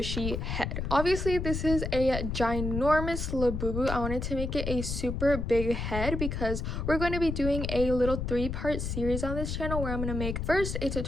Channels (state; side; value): noise; left; rumble, 3 dB below the sound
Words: head. Obviously this is a ginormous Labubu. I wanted to make it a super big head because we're going to be doing a little 3-part series on this channel where I'm going to make first a